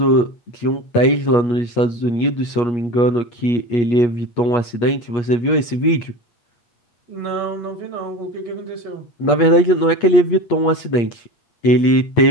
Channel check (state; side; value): late; right; 8.4 ms